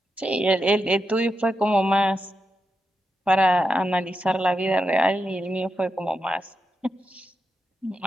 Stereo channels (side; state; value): both; normal; correlation 0.86